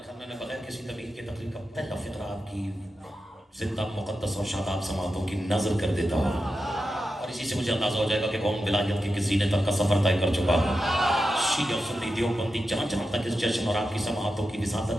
मैं बगैर किसी तबीयत के तकलीफ का पहला फिक्रा आपकी जिंदा मुकद्दस और शादाब समातों की नजर कर देता हूँ, और इसी से मुझे अंदाजा हो जाएगा कि कौन विलायत के किसी ने तक का सफर तय कर चुका है। शीया और सुन्नी देवबंदी जहाँ जहाँ तक इस जश्न और आपकी समातों की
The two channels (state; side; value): normal; both; correlation 0.90